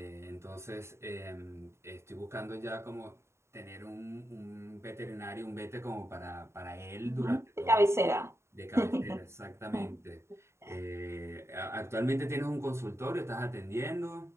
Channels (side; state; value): left; late; 0.13 ms